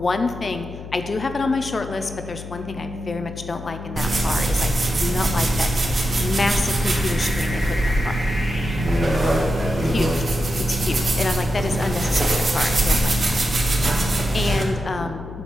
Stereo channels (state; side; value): noise; left; hum, 12 dB below the sound